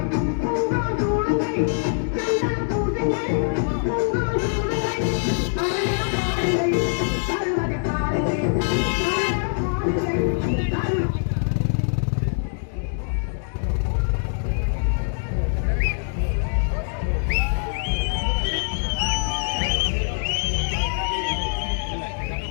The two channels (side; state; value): right; silent; digital silence